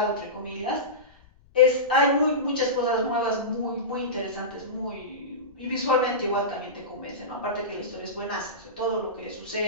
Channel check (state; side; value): noise; left; rumble, 29 dB below the sound